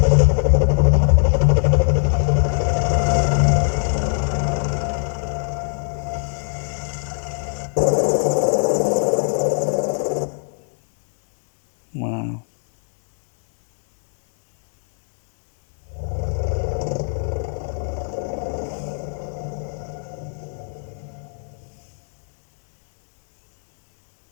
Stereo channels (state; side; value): silent; right; digital silence